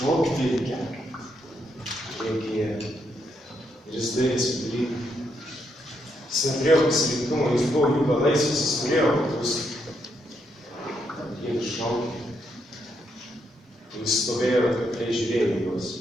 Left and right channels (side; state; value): both; normal; correlation 0.78